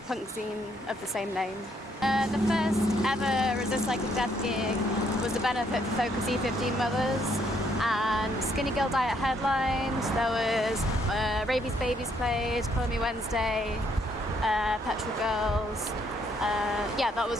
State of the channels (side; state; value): both; normal; correlation 0.70